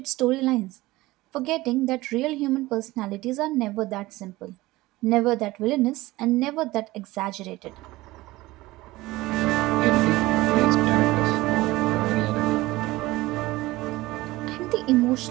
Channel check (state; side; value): quieter; left; 19.0 dB